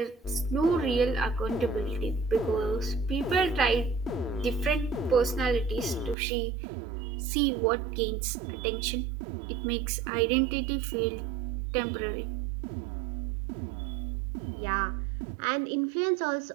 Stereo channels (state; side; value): drops out; left; at 6.2 s